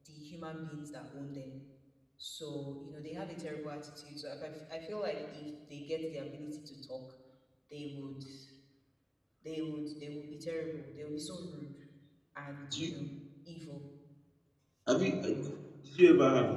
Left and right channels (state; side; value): identical; both; correlation 1.00